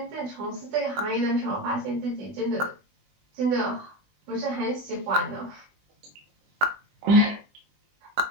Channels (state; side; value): late; left; 20 ms